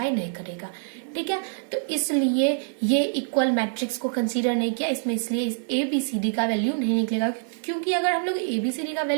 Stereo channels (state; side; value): silent; left; 61 dB below the other